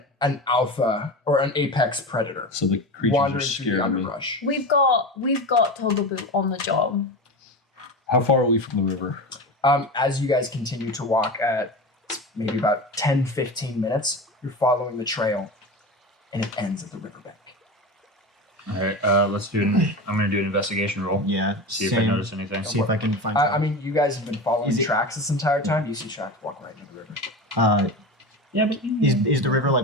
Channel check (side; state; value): both; normal; correlation 0.26